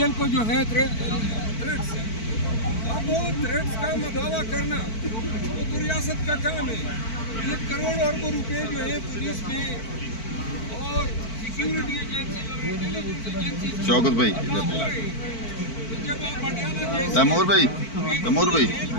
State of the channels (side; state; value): right; late; 4.5 ms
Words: को जो है थ्रेट्स है। अब वो थ्रेट्स का मदावा करना वो तो रियासत का काम है। ये करोड़ अरबों रुपए जो है पुलिस में और सिक्योरिटी एजेंसी शौकत भाई, तैमूर भाई,